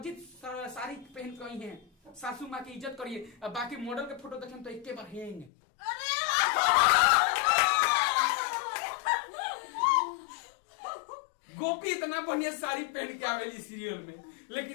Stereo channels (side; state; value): right; drops out; at 5.5 s